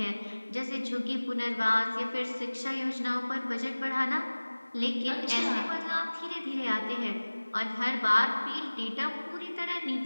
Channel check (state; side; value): inverted; both; correlation -1.00